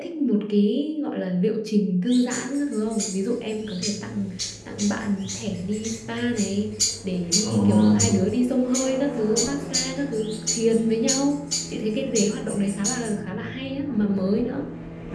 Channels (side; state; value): both; identical; correlation 1.00